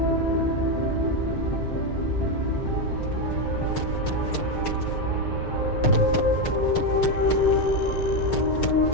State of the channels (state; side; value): late; right; 6.6 ms